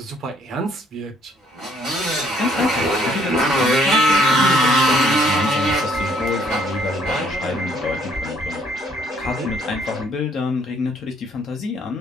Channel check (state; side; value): normal; both; correlation 0.64